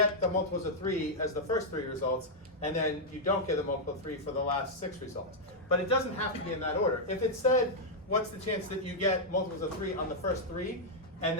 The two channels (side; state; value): both; normal; correlation -0.04